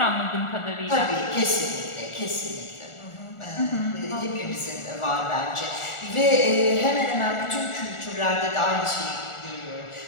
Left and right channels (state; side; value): late; right; 1.4 ms